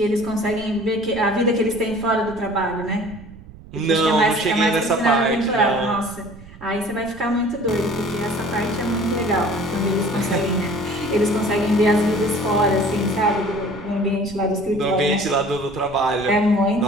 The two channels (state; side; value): noise; right; rumble, 18 dB below the sound